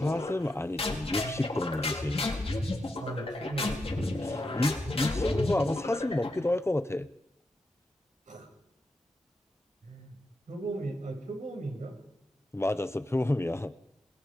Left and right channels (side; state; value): both; normal; correlation 0.85